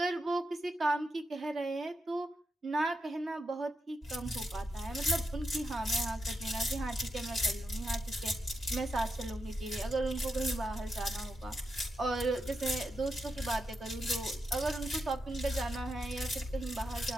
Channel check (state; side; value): normal; both; correlation 0.86